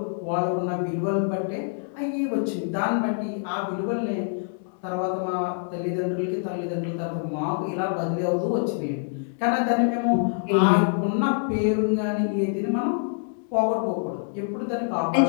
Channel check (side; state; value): right; silent; digital silence